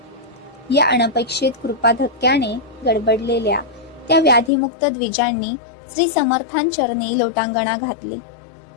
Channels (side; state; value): right; drops out; at 4.5 s